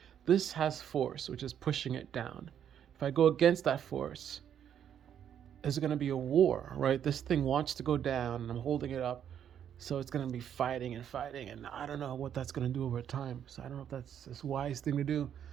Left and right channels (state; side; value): quieter; left; 9.2 dB